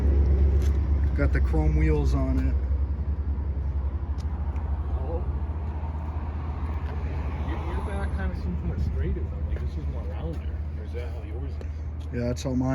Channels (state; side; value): identical; both; correlation 1.00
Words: Got the chrome wheels on it. Your back kind of seems more straight. Like this is more rounder. Or is that how yours is? Yeah, that's how